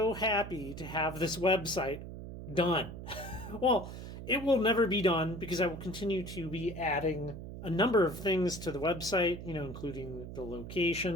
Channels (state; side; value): noise; right; hum, 10 dB below the sound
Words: happy to have this website done. Well, it will never be done because I will continue to be adding a number of things to the website, including the